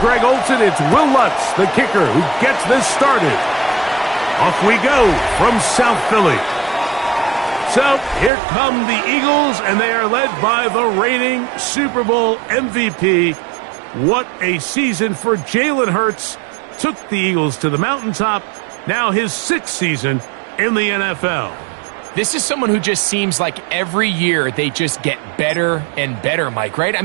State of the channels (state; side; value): drops out; left; at 8.3 s